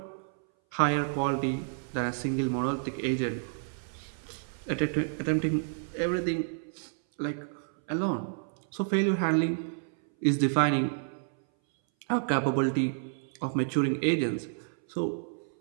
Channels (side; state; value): left; silent; 58 dB below the other